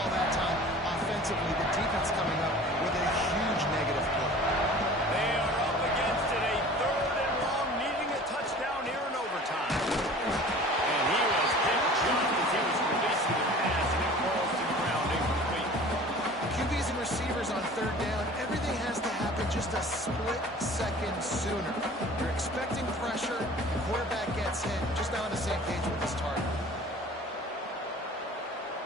that time offensively. The defense coming up with a huge negative play. They are up against it, a third and long, needing a touchdown here in overtime. And he was hit just as he was releasing the pass, and it falls to the ground incomplete. QBs and receivers on third down, everything has to happen just a split second sooner. You're expecting pressure, the quarterback gets hit, just not on the same page with his target.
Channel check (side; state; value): both; normal; correlation 0.44